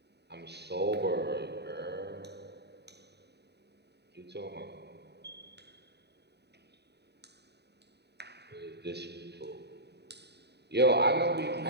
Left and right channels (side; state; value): left; late; 0.49 ms